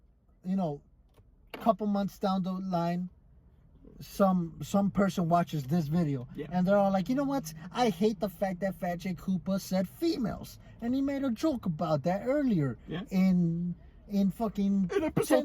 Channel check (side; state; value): both; identical; correlation 1.00